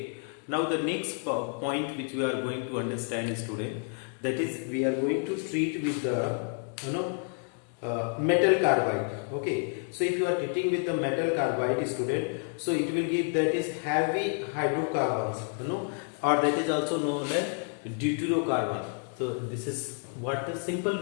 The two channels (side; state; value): right; quieter; 38.0 dB